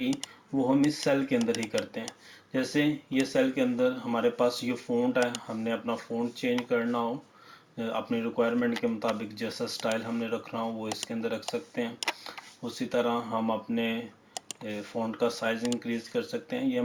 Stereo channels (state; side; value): identical; both; correlation 1.00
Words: वो हम इस सेल के अंदर ही करते हैं। जैसे ये सेल के अंदर हमारे पास ये फ़ॉन्ट है, हमने अपना फ़ॉन्ट चेंज करना हो अपनी रिक्वायरमेंट के मुताबिक जैसा स्टाइल हमने रखना हो वो इसके अंदर रख सकते हैं। उसी तरह हम अपने फ़ॉन्ट का साइज़ इंक्रीज़ कर सकते हैं। ये